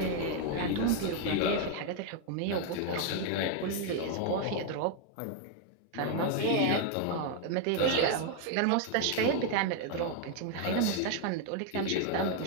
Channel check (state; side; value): different; both; correlation 0.01